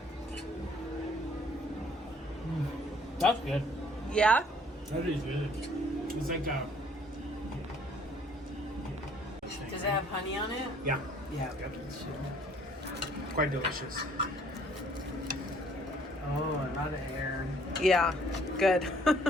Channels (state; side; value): normal; both; correlation 0.60